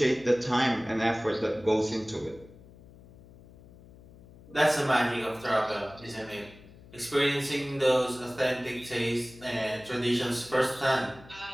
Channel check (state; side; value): noise; left; hum, 22 dB below the sound